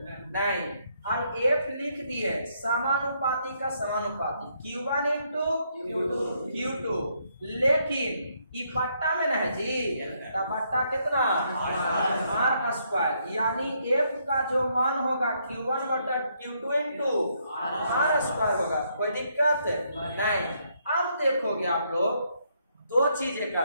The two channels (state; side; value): inverted; both; correlation -0.73